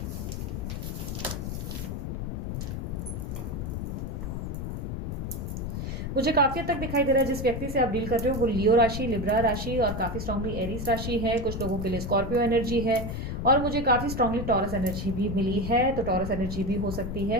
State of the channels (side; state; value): left; noise; rumble, 4 dB below the sound